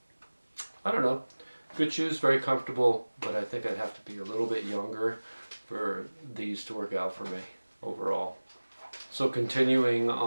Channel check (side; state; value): both; inverted; correlation -1.00